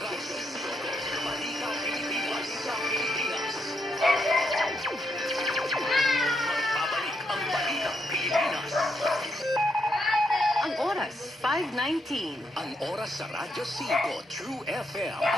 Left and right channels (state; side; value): normal; both; correlation 0.78